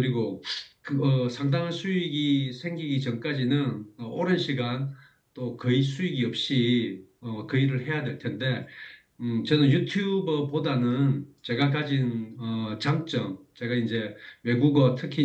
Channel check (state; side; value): identical; both; correlation 1.00